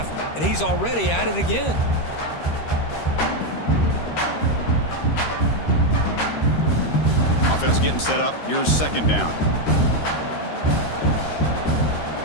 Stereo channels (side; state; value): right; late; 13 ms